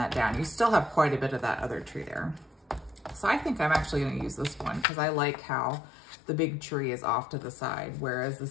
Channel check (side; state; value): right; drops out; at 4.9 s